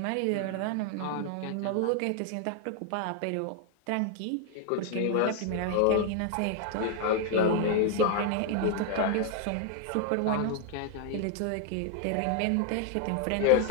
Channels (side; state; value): both; different; correlation 0.00